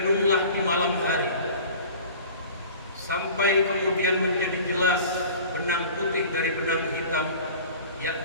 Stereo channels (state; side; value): inverted; both; correlation -0.42